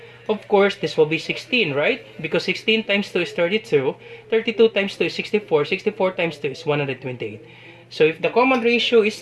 Of course, this will be 16, right? Because 16 times 2 is 32. 32 times 2 is 64. 64 times 2 is 128. So if the common ratio is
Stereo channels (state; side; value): identical; both; correlation 1.00